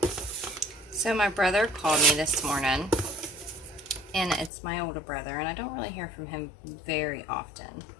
So my brother called me this morning, and it's my older brother, and I don't really hear from him very often.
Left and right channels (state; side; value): drops out; right; at 4.5 s